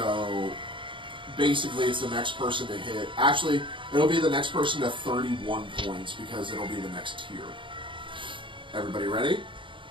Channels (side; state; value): left; late; 0.24 ms